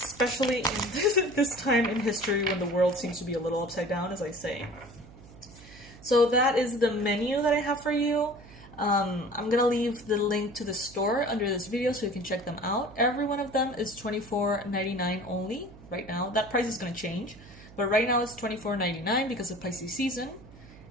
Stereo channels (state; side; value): noise; right; hum, 20 dB below the sound